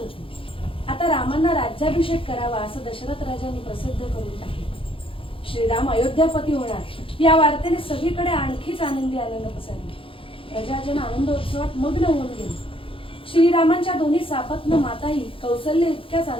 आता रामांना राज्याभिषेक करावा असं दशरथ राजांनी प्रसिद्ध करून टाकले. श्रीराम अयोध्यापती होणार या वार्तेने सगळीकडे आणखीच आनंदी आनंद पसरला. प्रजाजन आनंदोत्सवात मग्न होऊन गेले. श्रीरामांच्या दोन्ही सापत्न माताही कौसल्य इतक्याच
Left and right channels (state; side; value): late; right; 0.26 ms